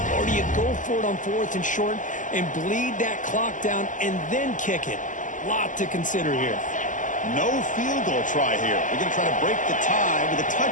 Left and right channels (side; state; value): right; late; 0.37 ms